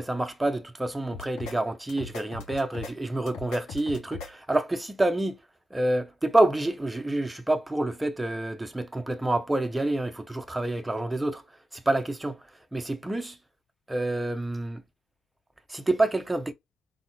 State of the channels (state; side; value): normal; both; correlation 0.95